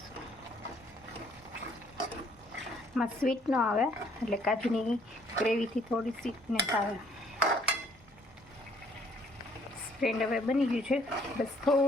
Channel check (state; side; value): normal; both; correlation 0.63